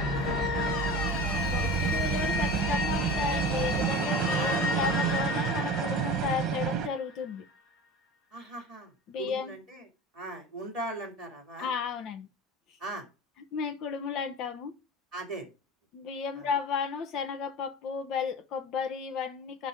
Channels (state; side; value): normal; both; correlation 0.33